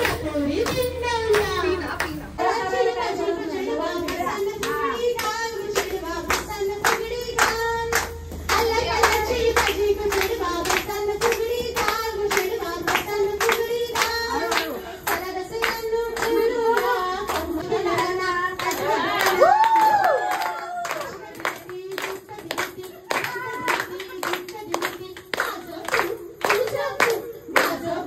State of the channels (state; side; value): identical; both; correlation 1.00